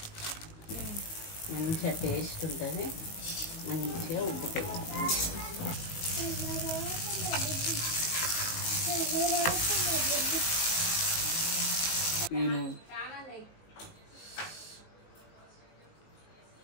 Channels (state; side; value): late; right; 19 ms